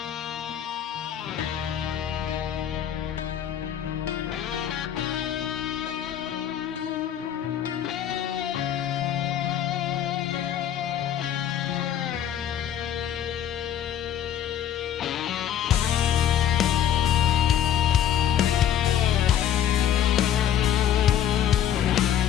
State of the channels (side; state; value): right; quieter; 10.1 dB